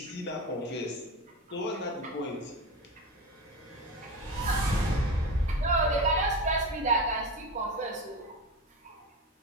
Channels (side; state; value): both; normal; correlation 0.24